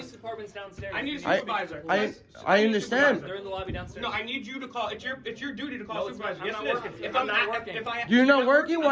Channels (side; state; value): both; identical; correlation 1.00